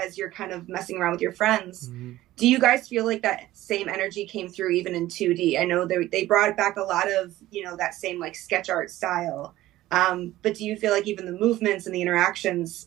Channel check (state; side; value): quieter; left; 15.7 dB